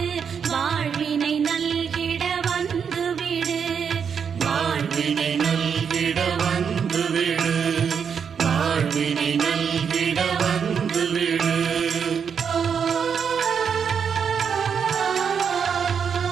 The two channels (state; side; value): quieter; left; 6.9 dB